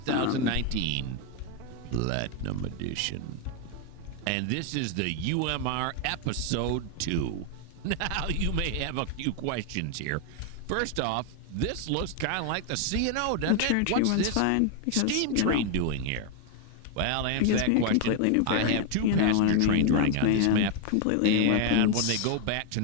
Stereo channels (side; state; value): both; different; correlation 0.01